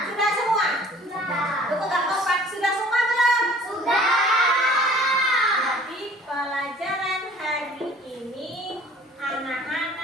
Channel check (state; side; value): normal; both; correlation 0.51